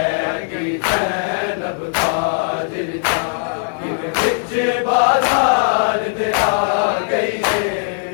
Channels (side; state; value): right; silent; digital silence